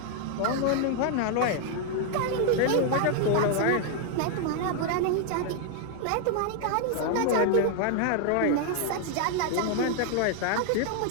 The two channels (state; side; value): different; both; correlation 0.00